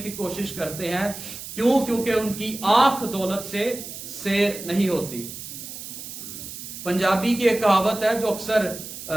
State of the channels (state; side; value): noise; right; hiss, 10 dB below the sound